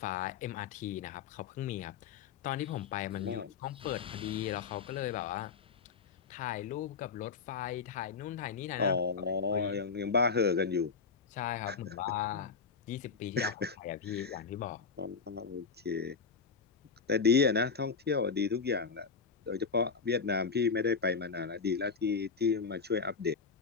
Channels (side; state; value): right; quieter; 5.4 dB